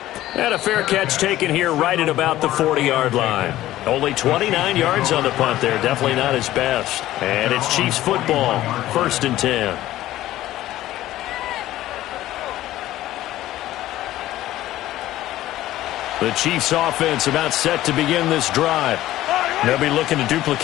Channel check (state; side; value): quieter; right; 14.7 dB